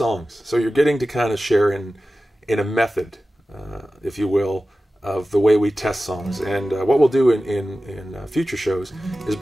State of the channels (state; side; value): normal; both; correlation 0.95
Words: So you're getting to kind of share in a method, if you will, of the way we test songs. And what we'll do in future shows is